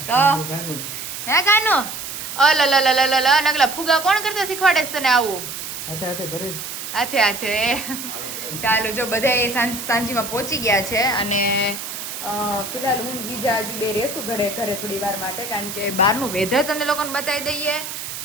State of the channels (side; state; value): right; noise; hiss, 8 dB below the sound